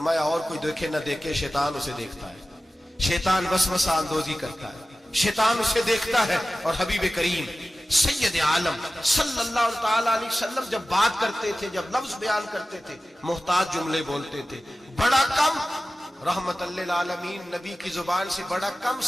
اور کوئی دیکھے نہ دیکھے شیطان اسے دیکھتا ہے, شیطان وسوسہ اندوزی کرتا ہے, شیطان اسے دیکھتا ہے. اور حبیب کریم سید عالم صلی اللہ تعالی علیہ وسلم جب بات کرتے تھے, جب لفظ بیان کرتے تھے, محتاج جملے بولتے تھے, بڑا کم, رحمت للعالمین نبی کی زبان سے بڑا کم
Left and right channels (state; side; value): normal; both; correlation 0.96